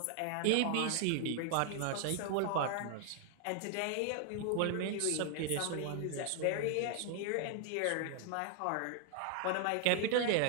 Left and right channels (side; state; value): both; different; correlation 0.00